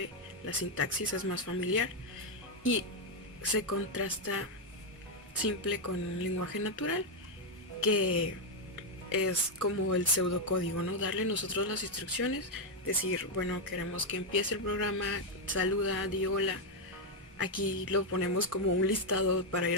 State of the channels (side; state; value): both; normal; correlation 0.02